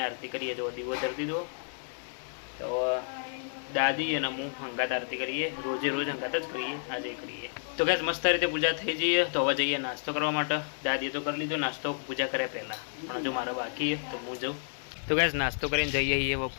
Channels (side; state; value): right; silent; digital silence